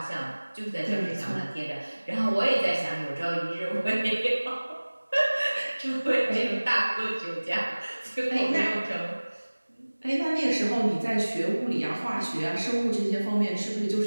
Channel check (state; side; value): inverted; both; correlation -1.00